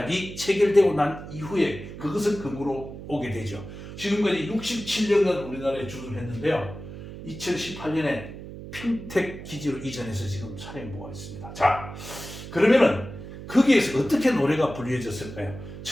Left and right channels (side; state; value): right; noise; hum, 12 dB below the sound